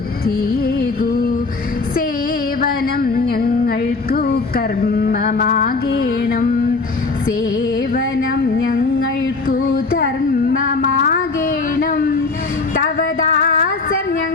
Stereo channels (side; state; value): right; quieter; 3.9 dB